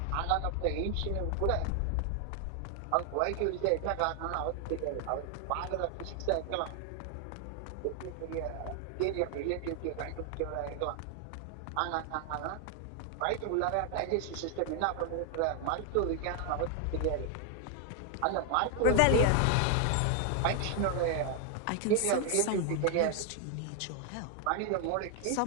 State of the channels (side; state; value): both; different; correlation 0.00